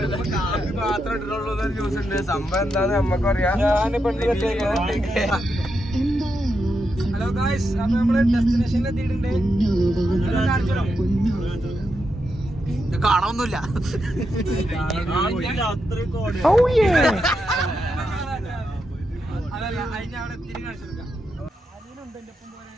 മാത്രം ഇട്ടിട്ടുള്ളൂ ന്യൂസ് ഉണ്ട്. സംഭവം എന്താന്ന് നമ്മക്ക് അറിയാം. ഹലോ ഗായ്സ്, അപ്പൊ നമ്മള് ഡെസ്റ്റിനേഷനിൽ എത്തിയിട്ടുണ്ട്. കാണാനൊന്നുമില്ല. അതല്ല അതിന് അവിടെ എത്തിരി കാണിച്ചു കൊടുക്കാം. അനിയനുണ്ട് എന്റെ ഒപ്പം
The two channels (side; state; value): both; normal; correlation 0.84